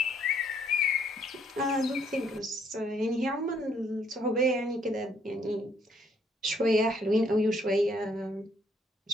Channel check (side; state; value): both; normal; correlation 0.67